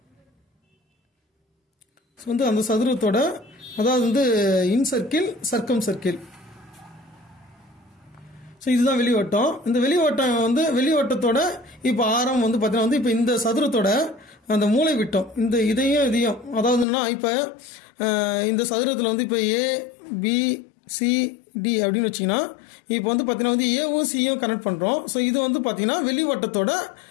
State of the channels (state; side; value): drops out; right; at 16.9 s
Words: ஸோ வந்து அந்த சதுரத்தோட, அதாவது வந்து இன்சர்க்கிள் சர்க்கம் சர்க்கிள். ஸோ இதுதான் வெளிவட்டம். இந்த வெளிவட்டம் வந்து வெளிவட்டத்தோட இப்போ ஆரம் வந்து பார்த்தீங்கன்னா வந்து இப்போ இந்த சதுரத்தோட அந்த மூளை விட்டம், இந்த இதையும் அதாவதுன்னா இப்போ இந்த சதுரத்தில் வந்து இப்போ ABCD அப்படின்னு வச்சிங்கன்னா இப்போ வந்து பார்த்தீங்கன்னா வந்து ஏவும் சியும் கனெக்ட் பண்ணுறோம். ஸோ இது வந்து பார்த்தீங்கன்னா வெளிவட்டத்தோட